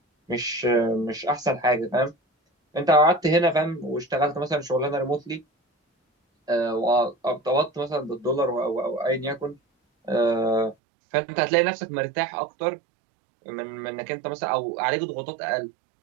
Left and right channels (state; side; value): drops out; left; at 10.8 s